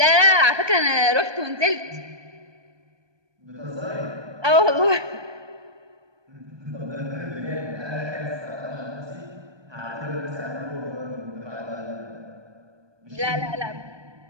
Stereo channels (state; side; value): late; left; 1.2 ms